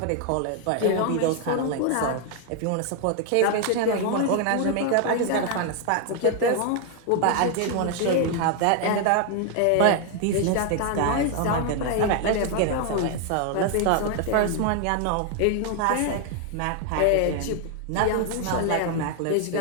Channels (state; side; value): different; both; correlation 0.00